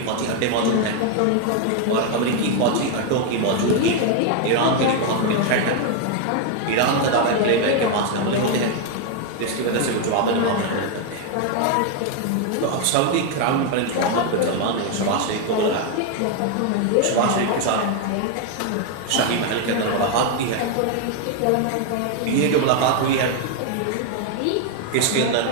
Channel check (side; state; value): both; different; correlation 0.01